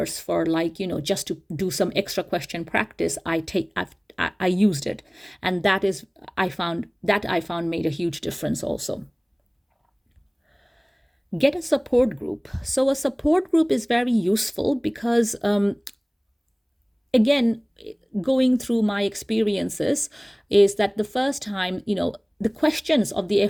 for just to do some extra question practice, I used it. And I found made a huge difference also. Get a support group. So a support group is very useful because again, going through my experiences, is that the first time, the questions of the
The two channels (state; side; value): identical; both; correlation 1.00